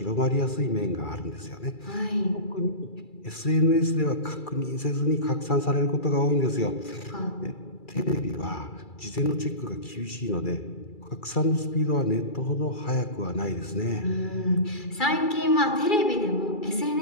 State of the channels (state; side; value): late; right; 2.3 ms